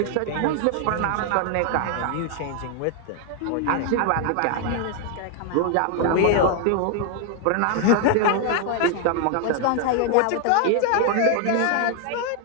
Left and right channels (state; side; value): different; both; correlation 0.00